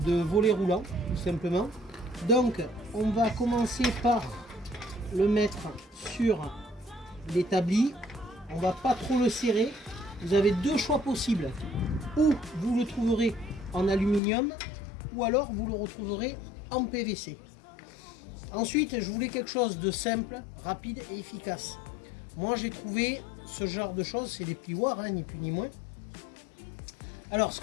de volet roulant, tout simplement. Donc on va commencer par le mettre sur l'établi. On va pas trop le serrer. Vous avez 2 choix possibles. Ou vous le trouverez en aluminium, ou alors vous le retrouverez en PVC. Ensuite je voulais quelque chose de simple, rapide et efficace. Moi j'ai trouvé ce genre de choses, c'est des plioirs, ni plus ni moins. Alors ce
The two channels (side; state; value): right; drops out; at 14.2 s